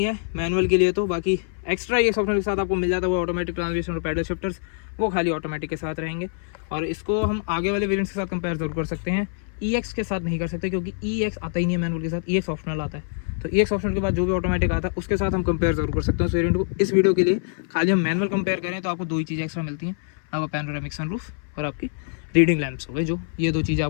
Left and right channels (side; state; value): right; silent; 58 dB below the other